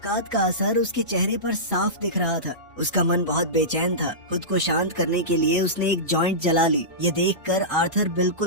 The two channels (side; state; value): both; normal; correlation -0.18